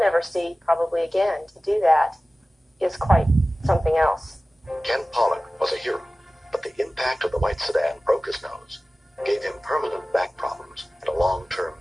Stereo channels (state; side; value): normal; both; correlation 0.97